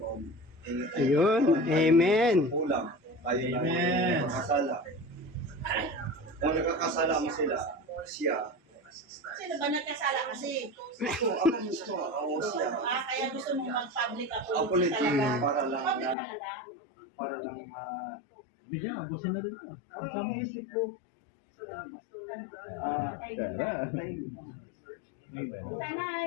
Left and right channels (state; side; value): drops out; right; at 16.2 s